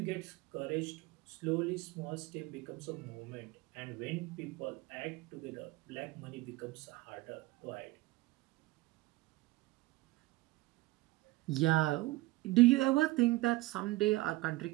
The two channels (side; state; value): left; quieter; 19.7 dB